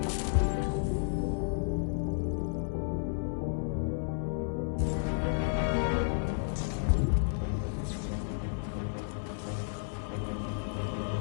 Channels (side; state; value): right; silent; 56 dB below the other